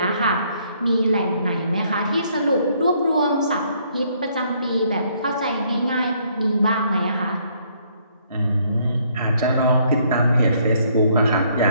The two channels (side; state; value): both; inverted; correlation -0.67